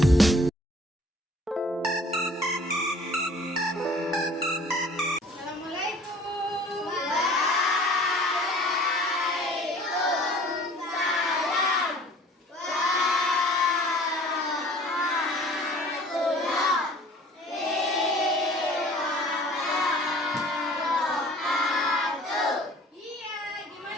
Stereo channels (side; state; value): both; normal; correlation 0.50